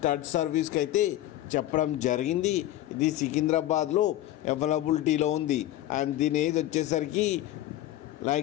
సర్వీస్కి అయితే చెప్పడం జరిగింది. ఇది సికింద్రాబాద్లో అవైలబిలిటీలో ఉంది. అండ్ దీని ఏజ్ వచ్చేసరికి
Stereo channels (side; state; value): right; quieter; 14.1 dB